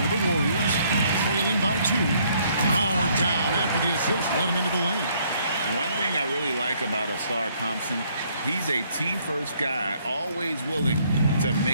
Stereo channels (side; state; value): both; inverted; correlation -0.66